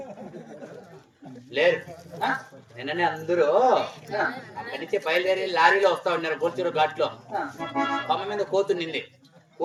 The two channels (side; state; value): both; identical; correlation 1.00